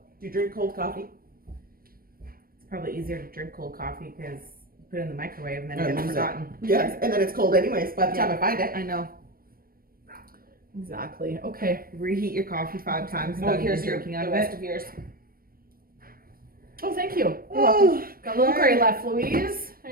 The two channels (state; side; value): late; left; 0.43 ms